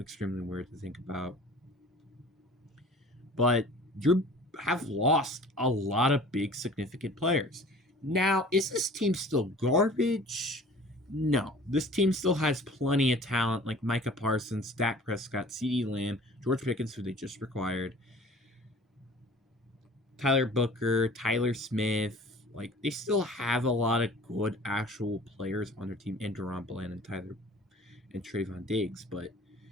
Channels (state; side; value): normal; both; correlation 0.46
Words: extremely weird to think about. But you have lost a lot of big, significant players. Now, is this team still garbage? No. This team still has plenty of talent, like Micah Parsons, Dak Prescott, CeeDee Lamb, George Pickens, who they just acquired, Tyler Booker, Tyler Smith. Like, they still have a lot of good actual players on their team, and Deron Bland and Trayvon Diggs. But